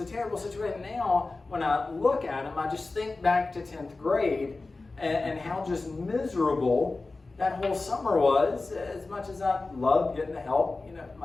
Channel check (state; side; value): quieter; right; 3.5 dB